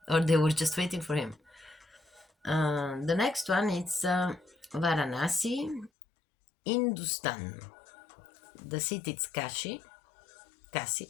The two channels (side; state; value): right; drops out; at 5.9 s